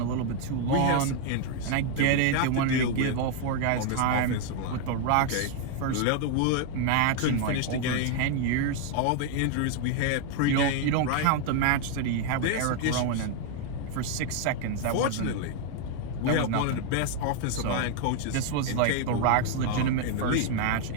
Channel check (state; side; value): different; both; correlation 0.00